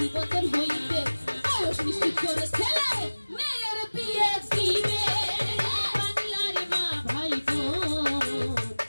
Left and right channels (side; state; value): both; inverted; correlation -1.00